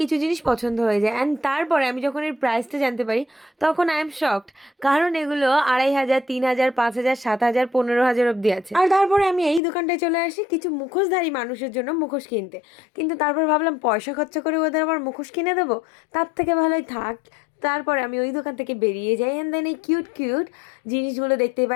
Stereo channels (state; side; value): drops out; right; at 9.6 s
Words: কিছু জিনিস পছন্দ হয়ে যায়। অ্যান্ড তারপরে আমি যখন এর প্রাইসটা জানতে পারি তখন আই এম শকড, কারণ এগুলো 2500, 3000, 5000, 7000, 15000 অব্দি আছে। আর তারপরে আমি এই দোকানটায় চলে আসি কিছু মুখোশধারী মানুষের জন্য মুখোশ কিনতে, কিন্তু তারপর ভাবলাম পয়সা খরচা করে ওদের আবার মুখোশ কিনে দেবো, তার থেকে ভালোই থাক। তারপরে আমি ওই দোকান থেকে বেরিয়ে যাই। অ্যান্ড দেন এই কিউট কিউট জিনিসগুলো দেখতে